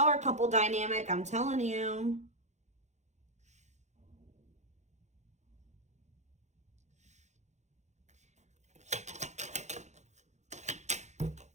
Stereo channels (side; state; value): left; late; 0.33 ms